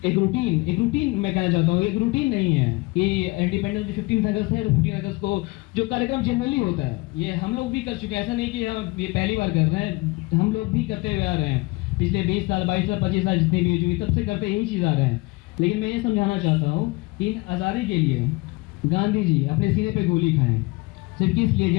एक रूटीन मैं कहना चाहता हूँ, एक रूटीन नहीं है कि इंडिपेंडेंस डे 15 अगस्त है, 15 अगस्त को जो कार्यक्रम जनरली होता है ये हम लोग भी कर चुके हैं। ऐसा नहीं कि हम ये पहली बार कर रहे हैं, हम लोग भी करते हुए आ रहे हैं पिछले 20 साल 22 साल 25 साल जितनी भी हुई तब से करते यही चीज़ आ रहे हैं। लेकिन मैं ये समझाना चाहता हूँ कि इन आज़ादी के लिए गांधी जी अपने सीने पे गोली खाएं, सिर्फ किस लिए?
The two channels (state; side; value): quieter; right; 23.9 dB